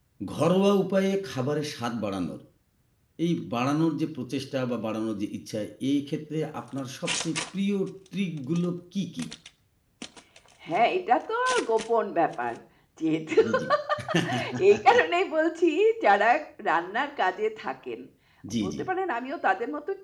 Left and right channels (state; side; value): identical; both; correlation 1.00